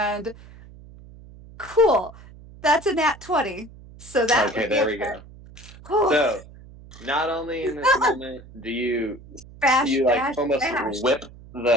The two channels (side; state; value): right; noise; hum, 20 dB below the sound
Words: cool. That's a nat 20. So that Okay, would be there we go. So not only in this moment do you bash, almost bash. whip